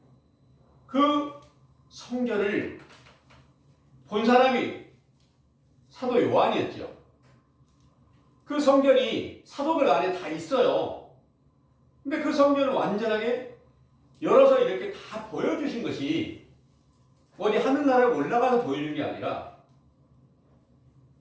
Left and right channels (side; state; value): both; identical; correlation 1.00